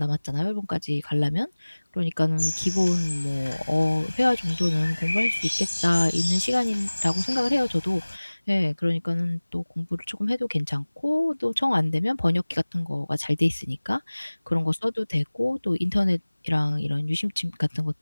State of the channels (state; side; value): inverted; both; correlation -1.00